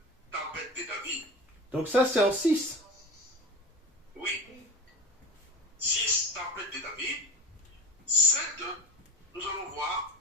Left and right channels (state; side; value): normal; both; correlation 0.31